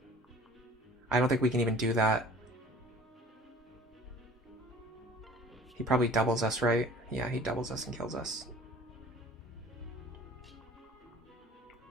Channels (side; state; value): both; normal; correlation 0.47